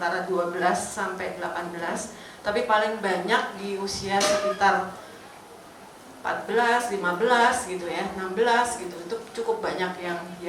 12 sampai 18, tapi paling banyak di usia sekitar 14, 15 gitu ya, 16 gitu. Itu cukup banyak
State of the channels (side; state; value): both; identical; correlation 1.00